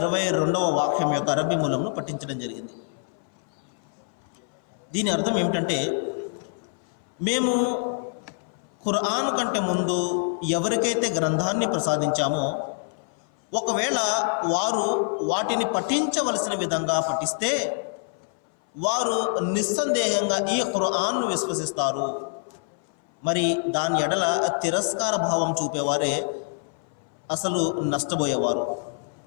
వాక్యం యొక్క అరబీ మూలంను పఠించడం జరిగింది. దీని అర్థం ఏమిటంటే, మేము ఖురాన్ కంటే ముందు ఎవరికైతే గ్రంథాన్ని ప్రసాదించామో ఒకవేళ వారు వాటిని పఠించవలసిన విధంగా పఠిస్తే వారు నిస్సందేహంగా ఈ ఖురాన్ను విశ్వసిస్తారు. మరి దాని ఎడల తిరస్కార భావం చూపేవారే అసలు నష్టపోయేవారు.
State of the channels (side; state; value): right; silent; 58 dB below the other